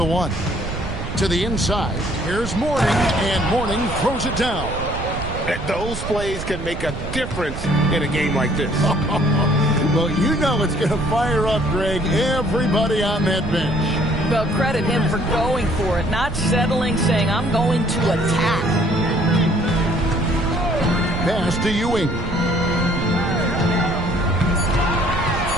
1. To the inside, here's Mourning, and Mourning throws it down. Those plays can make a difference in a game like this. Well, you know it's going to fire up, Greg, everybody on that bench. Well, credit him for going for it, not settling, saying, I'm going to attack. Pass to Ewing.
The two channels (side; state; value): right; noise; rumble, 7 dB below the sound